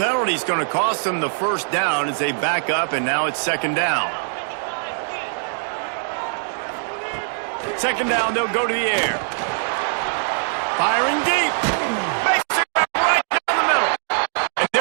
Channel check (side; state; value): left; silent; digital silence